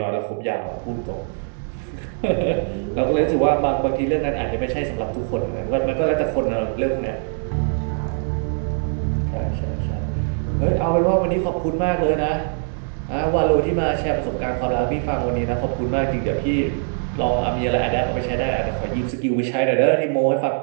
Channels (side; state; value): left; silent; 57 dB below the other